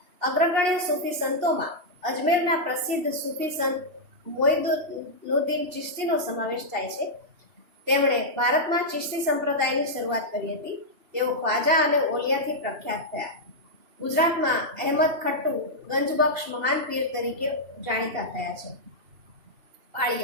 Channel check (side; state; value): left; late; 2.7 ms